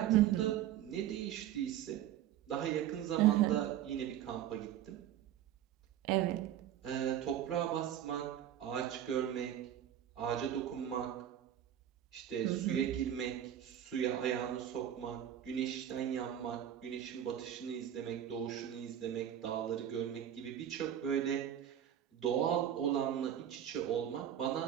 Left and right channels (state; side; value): quieter; left; 10.8 dB